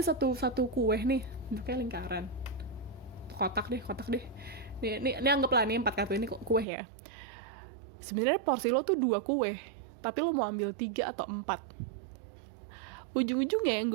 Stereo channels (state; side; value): drops out; left; at 6.7 s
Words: kue nih, kayak lingkaran, kotak deh. Ini anggaplah nih 4 kartu ini kue ya. Sebenarnya porsi lo tuh 2 kue, tapi lo mau ambil 3 atau 4. Ujung-ujungnya yang